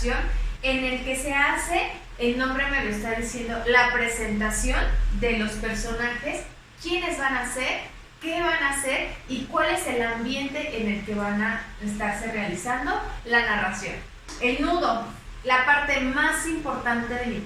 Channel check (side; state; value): both; identical; correlation 1.00